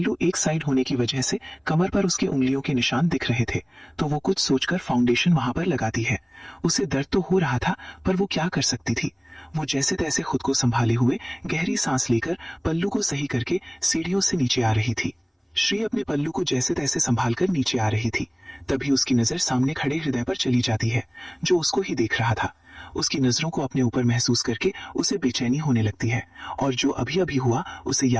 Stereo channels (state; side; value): identical; both; correlation 1.00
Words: एक साइड होने की वजह से कमर पर उसके उंगलियों के निशान दिख रहे थे, तो वो कुछ सोचकर फाउंडेशन वहां पर लगाती है। उसे दर्द तो हो रहा था पर वो क्या कर सकती थी। वो जैसे तैसे खुद को संभाले हुए गहरी सांस लेकर पल्लू को सही करके सीढ़ियों से नीचे आ रही थी। श्री अपने पल्लू को जैसे तैसे संभाल कर नीचे आ रही थी। तभी उसकी नजर सामने खड़े हृदय पर चली जाती है, जो उसको ही देख रहा था। उसकी नजरों को अपने ऊपर महसूस करके उसे बेचैनी होने लगती है और जो अभी अभी हुआ उसे